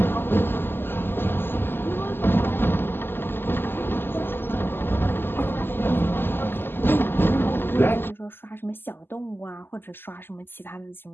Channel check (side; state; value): right; late; 0.10 ms